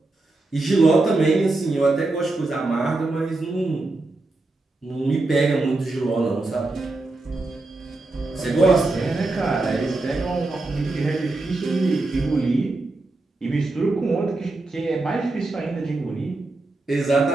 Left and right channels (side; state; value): left; quieter; 3.1 dB